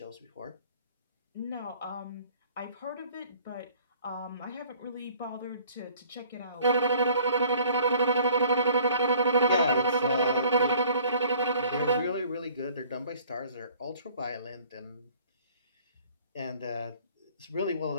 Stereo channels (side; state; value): both; inverted; correlation -0.53